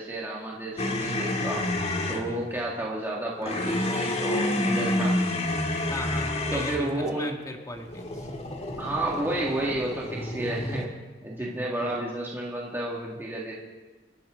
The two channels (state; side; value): normal; both; correlation 0.53